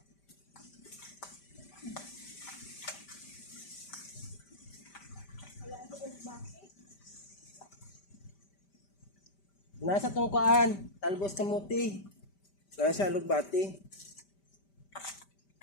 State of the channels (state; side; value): late; right; 5.1 ms